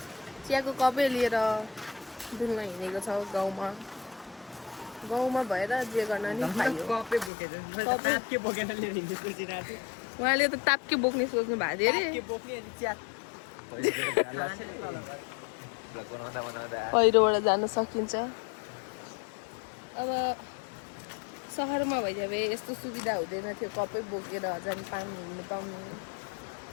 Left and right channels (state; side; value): drops out; right; at 7.3 s